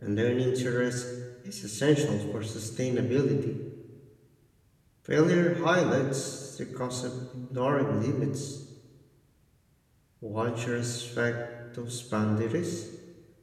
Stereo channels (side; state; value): both; identical; correlation 1.00